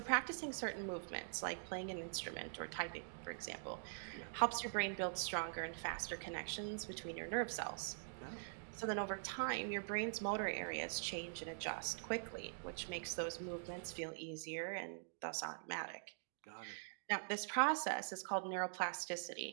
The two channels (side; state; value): left; silent; digital silence